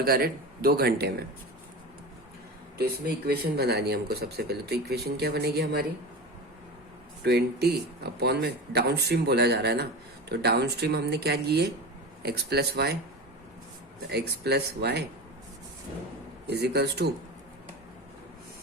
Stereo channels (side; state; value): both; normal; correlation 0.28